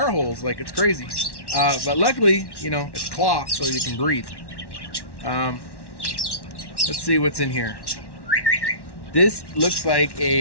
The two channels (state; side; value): late; right; 1.1 ms